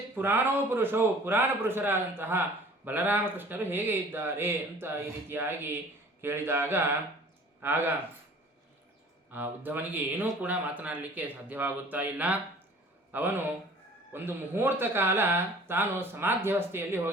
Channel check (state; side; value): normal; both; correlation 0.49